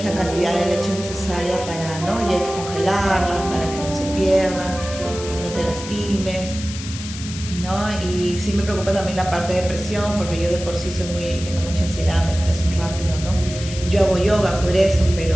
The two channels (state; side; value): noise; left; hiss, 11 dB below the sound